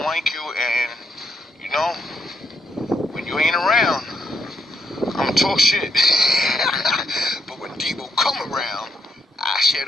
like you, and, you know, when you ain't around, I'ma talk shit. But when Debo come around, I shut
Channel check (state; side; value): normal; both; correlation 0.76